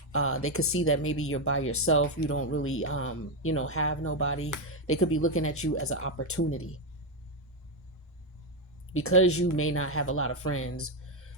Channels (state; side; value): normal; both; correlation 0.06